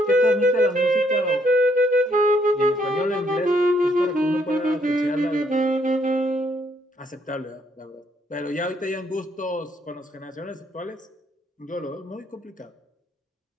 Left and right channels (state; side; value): normal; both; correlation 0.70